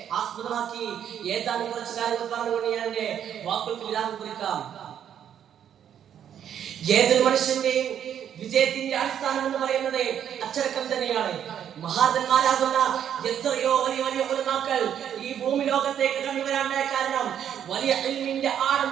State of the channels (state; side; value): quieter; left; 9.4 dB